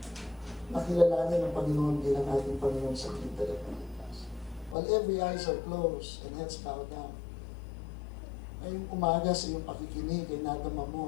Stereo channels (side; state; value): right; drops out; at 4.8 s